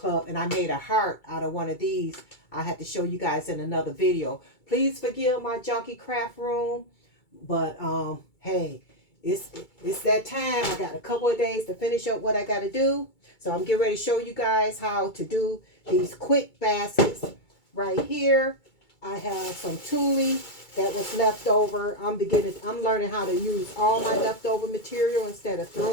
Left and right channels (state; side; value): late; right; 2.3 ms